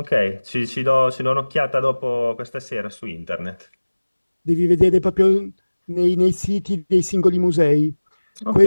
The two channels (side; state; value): both; inverted; correlation -1.00